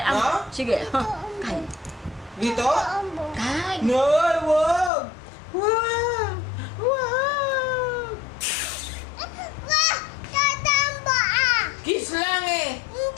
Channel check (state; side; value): drops out; right; at 4.9 s